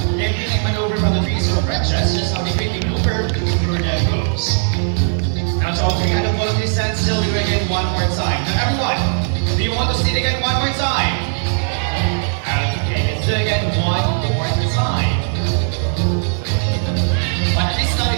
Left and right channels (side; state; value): left; silent; digital silence